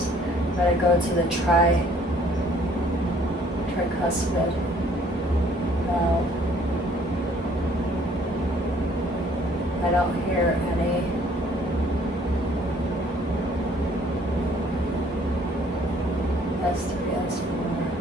But I go to the tricuspid valve. I don't hear any S3,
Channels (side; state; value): both; normal; correlation 0.59